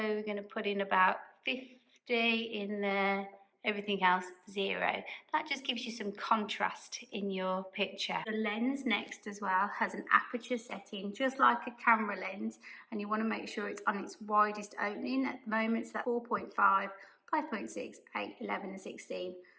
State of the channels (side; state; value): both; identical; correlation 1.00